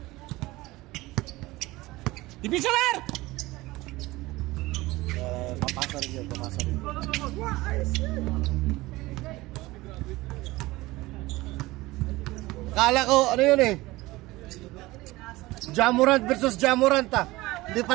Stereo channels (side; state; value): left; quieter; 19.7 dB